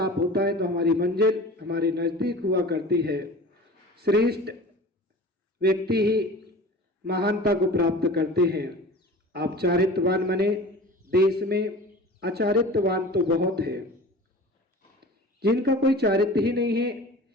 होता है तो हमारी मंजिल हमारे नजदीक हुआ करती है। श्रेष्ठ व्यक्ति ही महानता को प्राप्त करते हैं। आप चारित्रवान बने। देश में अचारित्रवान तो बहुत है, जिनका कोई चारित्र ही नहीं है,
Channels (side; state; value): both; normal; correlation 0.39